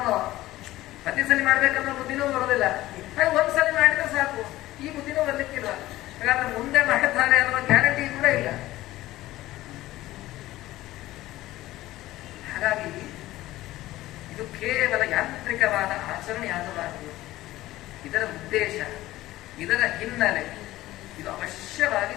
ಪ್ರತಿ ಸಲ ಮಾಡ್ಬೇಕನ್ನೋ ಬುದ್ಧಿನೂ ಬರೋದಿಲ್ಲ. ಹಾಗೆ ಒಂದ್ಸಲಿ ಮಾಡಿದ್ರೆ ಸಾಕು, ಈ ಬುದ್ಧಿನೂ ಬರ್ಲಿಕ್ಕಿಲ್ಲ. ಹಾಗಾದ್ರೆ ಮುಂದೆ ಮಾಡ್ತಾರೆ ಅನ್ನೋ ಗ್ಯಾರಂಟಿ ಕೂಡ ಇಲ್ಲ. ಹಾಗಾಗಿ ಇದು ಕೇವಲ ಯಾಂತ್ರಿಕವಾದ ಆಚರಣೆಯಾಗಬಾರದು. ಇದರ ಉದ್ದೇಶ, ಇದರ ಹಿನ್ನೆಲೆ ಇದು ಅವಶ್ಯವಾಗಿ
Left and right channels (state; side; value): quieter; right; 16.4 dB